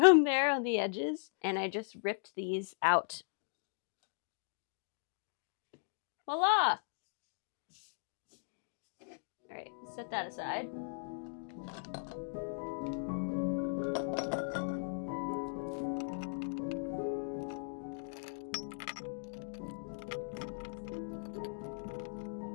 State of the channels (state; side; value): silent; right; digital silence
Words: there on the edges. And I just ripped these out. Voila! All right, set that aside.